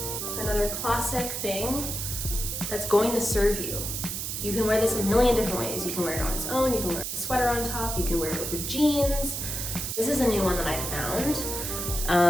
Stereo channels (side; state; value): right; noise; hiss, 4 dB below the sound